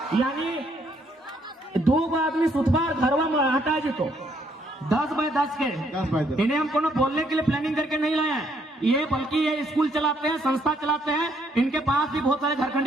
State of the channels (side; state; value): both; normal; correlation 0.69